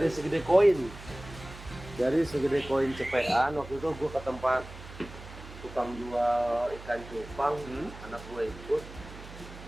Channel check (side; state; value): right; noise; hum, 15 dB below the sound